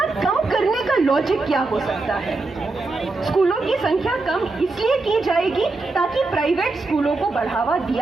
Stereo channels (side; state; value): left; quieter; 3.4 dB